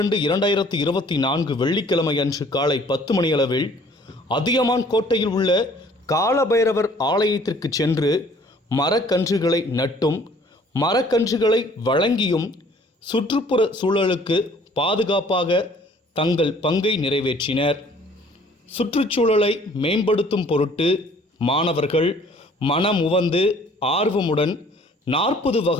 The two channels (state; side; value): normal; both; correlation 0.56